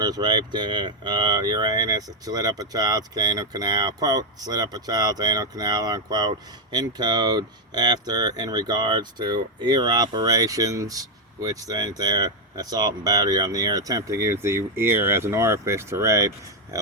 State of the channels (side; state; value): both; normal; correlation 0.02